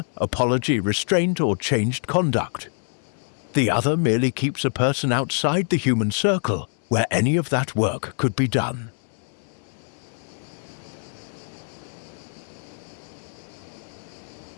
apology, restraint, or changed conduct. The other merely keeps a person outside the human circle where any of that work could be done.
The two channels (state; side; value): silent; right; 62 dB below the other